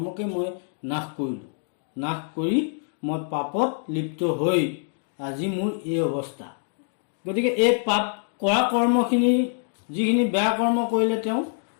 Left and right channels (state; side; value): silent; right; 62 dB below the other